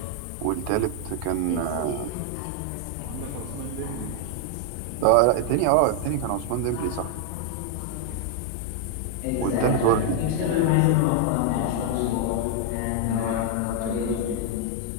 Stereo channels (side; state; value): both; different; correlation 0.00